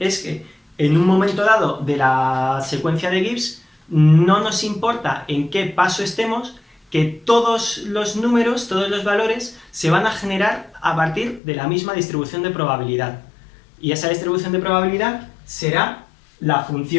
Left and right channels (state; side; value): drops out; right; at 11.4 s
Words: que en un momento dado de la secuencia de Gibbs no nos importa en qué paso estemos, que todos los números, todos los valores se van a generar a partir de la misma distribución de probabilidad. Y esa distribución de probabilidad será la